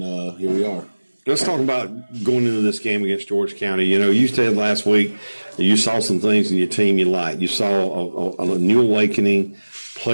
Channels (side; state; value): both; inverted; correlation -1.00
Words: here we are. Let's talk about going into this game against George County. You said last week that you saw some things in your team you liked. You saw a new awakening,